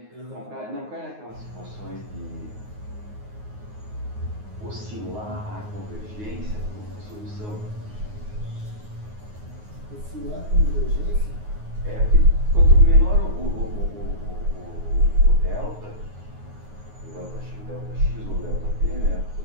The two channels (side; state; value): left; late; 9.5 ms